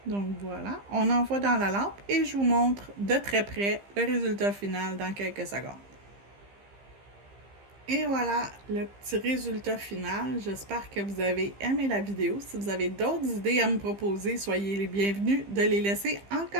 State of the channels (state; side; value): late; left; 15 ms